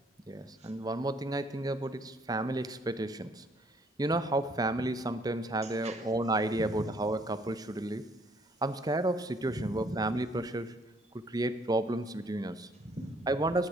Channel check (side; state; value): both; normal; correlation 0.64